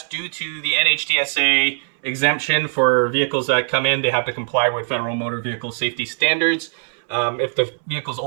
due to the NHTSA exemption for vehicles that come in. They have to comply with federal motor vehicle safety standards. If the vehicle's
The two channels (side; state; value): left; silent; 63 dB below the other